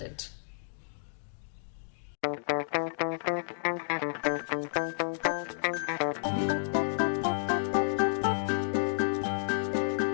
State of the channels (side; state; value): right; silent; digital silence